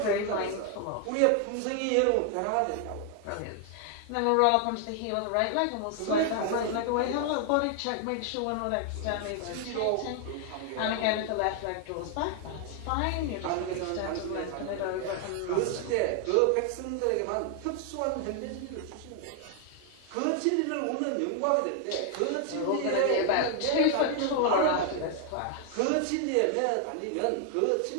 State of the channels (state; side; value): different; both; correlation 0.00